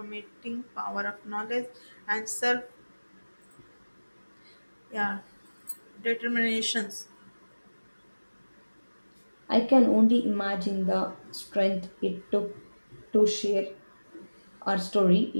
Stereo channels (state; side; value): inverted; both; correlation -1.00